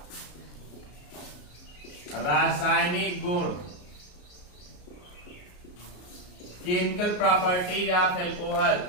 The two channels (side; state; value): right; late; 34 ms